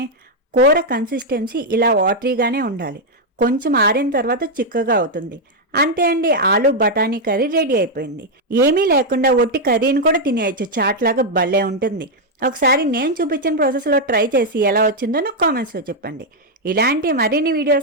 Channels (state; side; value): normal; both; correlation 0.00